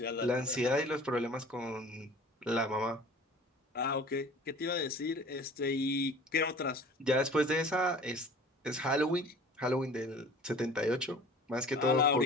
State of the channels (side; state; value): both; normal; correlation 0.45